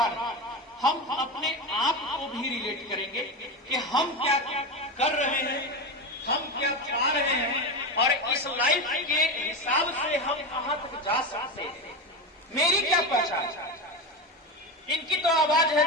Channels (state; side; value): normal; both; correlation 0.19